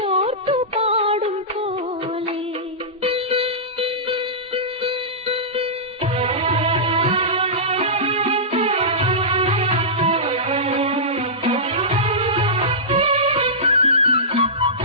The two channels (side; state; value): both; normal; correlation -0.17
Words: ഓർത്തു പാടും പോലെ.